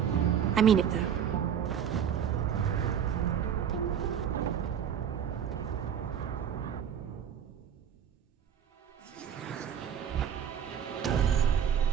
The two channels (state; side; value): quieter; left; 8.5 dB